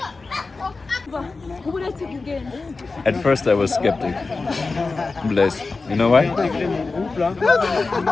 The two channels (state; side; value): quieter; right; 3.9 dB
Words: At first I was skeptic. Blaise. You know why?